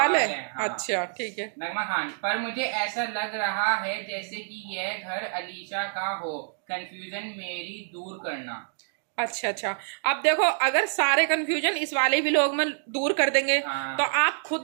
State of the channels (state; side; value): silent; left; digital silence